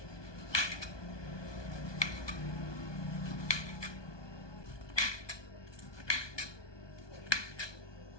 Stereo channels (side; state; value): right; late; 1.2 ms